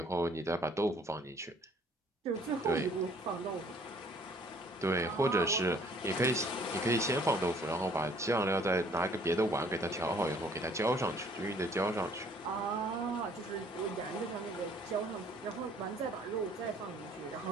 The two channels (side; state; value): both; normal; correlation 0.58